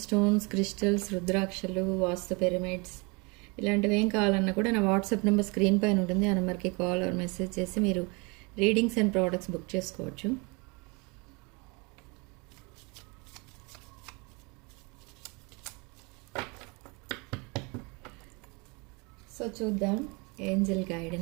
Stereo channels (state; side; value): quieter; left; 29.1 dB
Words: stones, crystals, రుద్రాక్షలు, వాస్తు పిరమిడ్స్ ఇలాంటివి ఏం కావాలన్నా కూడా నా వాట్సాప్ నెంబర్ స్క్రీన్ పైన ఉంటుంది. ఆ నెంబర్కి కాల్ ఆర్ మెసేజ్ చేసి మీరు రీడింగ్స్ అండ్ ప్రోడక్ట్స్ బుక్ చేసుకోవచ్చు. సో చూద్దాం ఏంజెల్